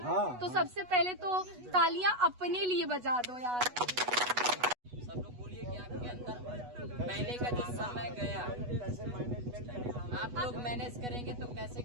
तो सबसे पहले तो तालियां अपने लिए बजा दो यार। सब लोग बोलिए कि आपके अंदर पहले का जो समय गया आप लोग मैनेज करेंगे तो कैसे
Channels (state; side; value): late; left; 8.2 ms